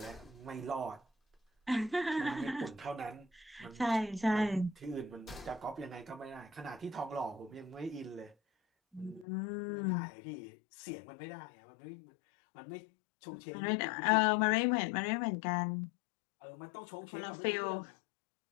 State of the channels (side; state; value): right; drops out; at 9.2 s